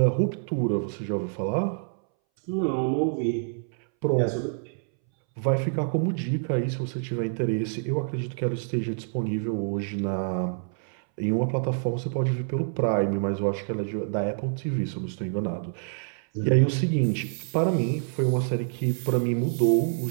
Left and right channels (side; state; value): left; silent; 60 dB below the other